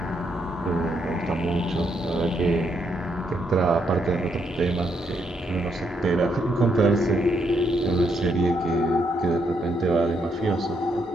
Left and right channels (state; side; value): normal; both; correlation 0.76